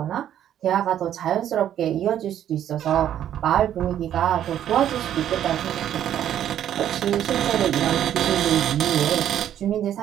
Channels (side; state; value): left; quieter; 10.7 dB